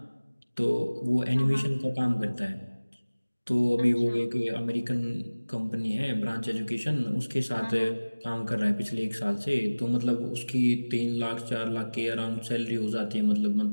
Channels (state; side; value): inverted; both; correlation -1.00